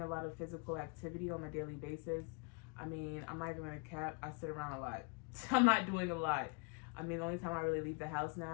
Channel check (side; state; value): right; quieter; 31.1 dB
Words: a lot of physical activity on a daily basis. I mean, I'm not even gonna cap, I sit around a lot. I'm not doing a lot. I mean, the only time I really leave the house